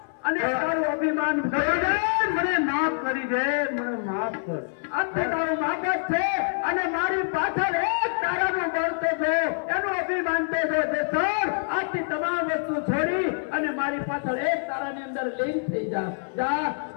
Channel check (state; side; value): silent; right; 61 dB below the other